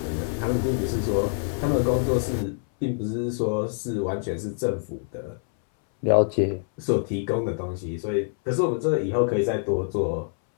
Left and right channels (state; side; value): silent; right; 61 dB below the other